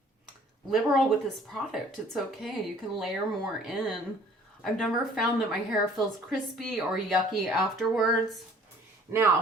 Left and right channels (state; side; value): normal; both; correlation 0.54